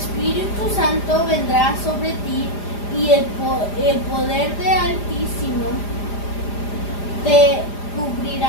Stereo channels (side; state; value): right; late; 4.9 ms